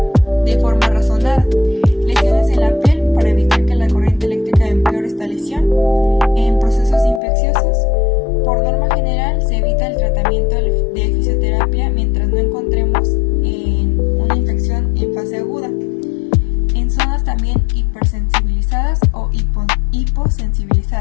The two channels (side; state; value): right; drops out; at 7.2 s